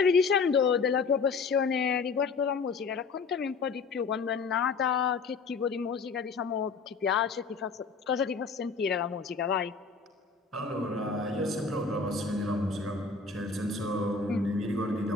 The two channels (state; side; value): quieter; right; 4.8 dB